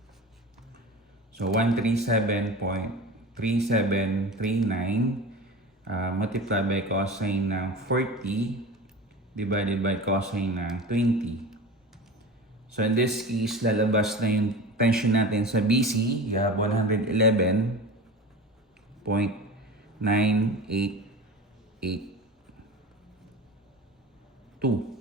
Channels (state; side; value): normal; both; correlation 0.33